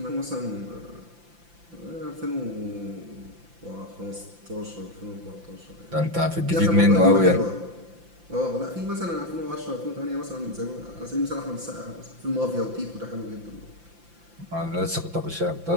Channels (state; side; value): late; left; 5.8 ms